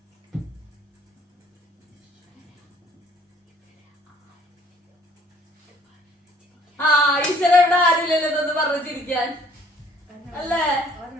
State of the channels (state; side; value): normal; both; correlation 0.58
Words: പഠിച്ചതെന്ന് പറഞ്ഞിരിക്കാൻ അല്ലേ